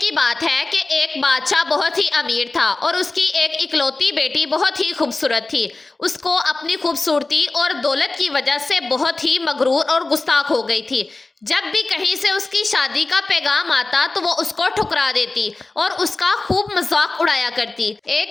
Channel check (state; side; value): quieter; right; 3.3 dB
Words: بات ہے کہ ایک بادشاہ بہت ہی امیر تھا اور اس کی ایک اکلوتی بیٹی بہت ہی خوبصورت تھی۔ اس کو اپنی خوبصورتی اور دولت کی وجہ سے بہت ہی مغرور اور گستاخ ہو گئی تھی۔ جب بھی کہیں سے اس کی شادی کا پیغام آتا تو وہ اس کو ٹھکرا دیتی اور اس کا خوب مذاق اڑایا کرتی۔ ایک